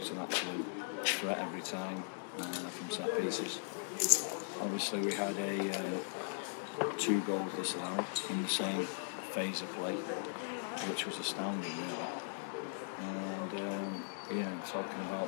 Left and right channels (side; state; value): right; silent; digital silence